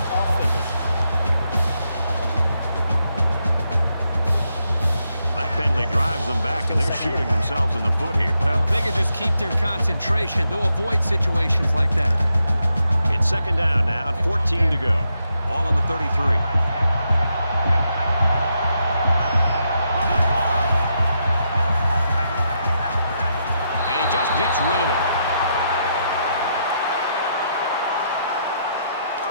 offense. That penalty drives them back, and they're shooting themselves in the foot here. Well, if they can just keep their concentration, they'll avoid situations like that. It's second down now, and 14 to go. All on the 33. Just gets rid of it.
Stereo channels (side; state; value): both; inverted; correlation -0.81